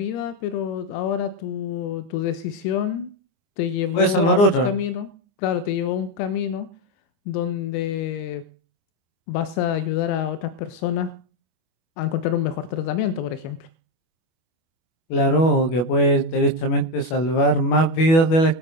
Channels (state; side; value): late; right; 25 ms